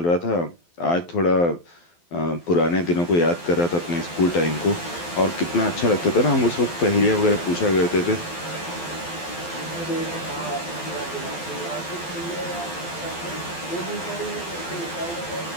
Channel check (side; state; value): right; late; 12 ms